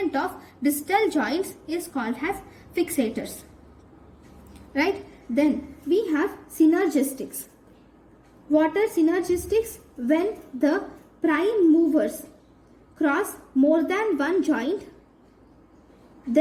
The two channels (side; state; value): both; identical; correlation 1.00